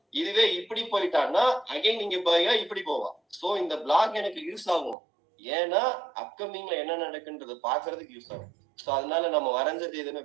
இதுவே இப்படி போயிட்டான்னா அகைன் நீங்க பாயா இப்படி போவான். சோ இந்த பிளாக் எனக்கு யூஸ் ஆகும், ஏன்னா அப்கமிங்ல என்ன நடக்குன்றது பாக்குறதுக்கு யூஸ் ஆகும். சோ அதனால நம்ம வரைஞ்சது எதுவுமே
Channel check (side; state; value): left; drops out; at 5.0 s